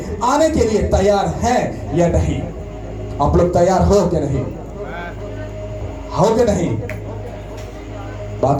आने के लिए तैयार है या नहीं? आप लोग तैयार हो कि नहीं? हो कि नहीं?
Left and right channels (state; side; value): identical; both; correlation 1.00